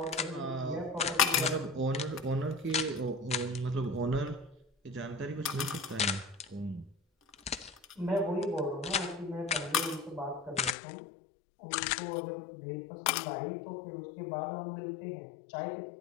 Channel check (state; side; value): drops out; right; at 10.8 s